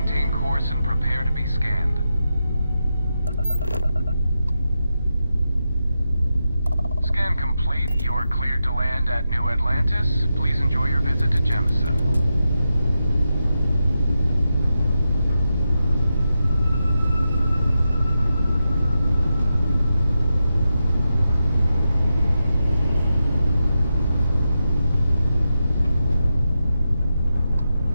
course and prepare to be scanned. Scan complete. You are cleared to land at New Atlantis. Please enjoy your visit to Jemison.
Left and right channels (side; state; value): both; inverted; correlation -0.88